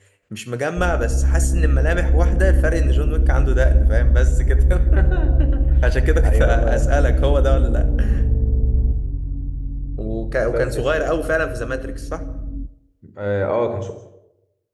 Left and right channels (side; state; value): both; identical; correlation 1.00